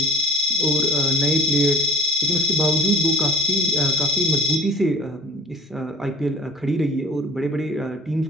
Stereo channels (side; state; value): both; normal; correlation 0.44